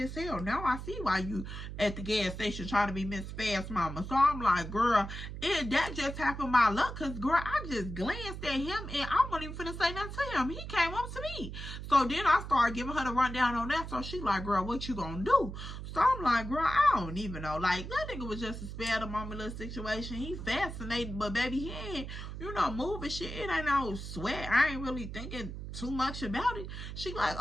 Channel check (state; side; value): noise; right; hum, 8 dB below the sound